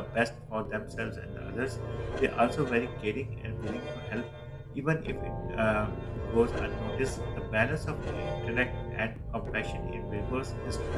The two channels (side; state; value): both; identical; correlation 1.00